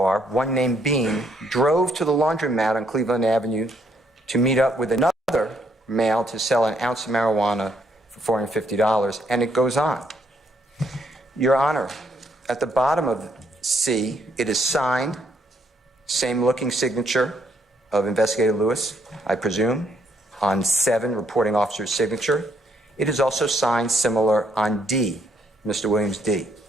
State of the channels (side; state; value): both; normal; correlation 0.71